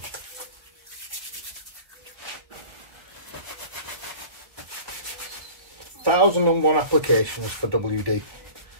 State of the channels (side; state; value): left; late; 1.5 ms